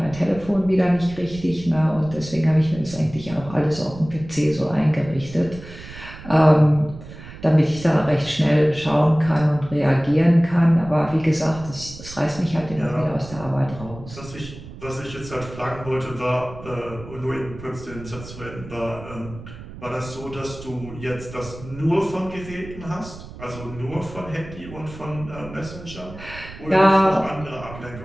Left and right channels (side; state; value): right; noise; rumble, 15 dB below the sound